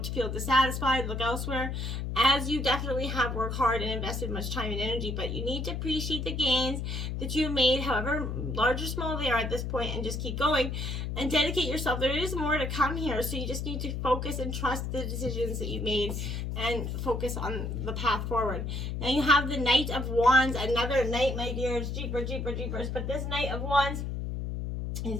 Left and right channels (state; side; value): noise; left; hum, 3 dB below the sound